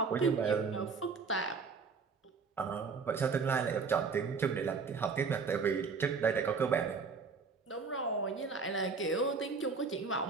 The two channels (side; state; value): left; quieter; 5.0 dB